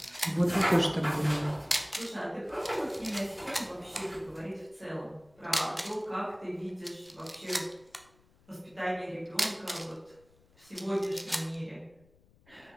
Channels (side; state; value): left; noise; rumble, 29 dB below the sound